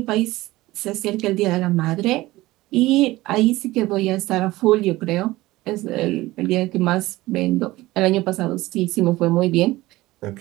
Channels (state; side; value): quieter; left; 18.5 dB